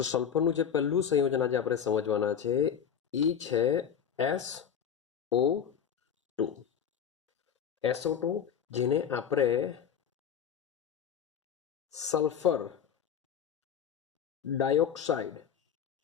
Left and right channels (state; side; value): quieter; right; 8.0 dB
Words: સલ્ફરનું જે પહેલું સંયોજન આજે આપણે સમજવાના છે એ છે SO2। SO2 જેને આપણે સલ્ફર